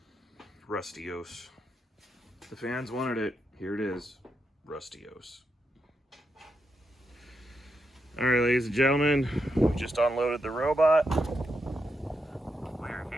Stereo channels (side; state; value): both; normal; correlation 0.83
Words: Rustios. The fans wanted it. Here it is. Rustios. All right, ladies and gentlemen, we just unloaded the robot. We're